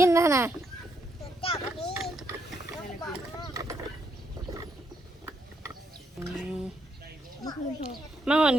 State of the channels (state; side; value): normal; both; correlation 0.77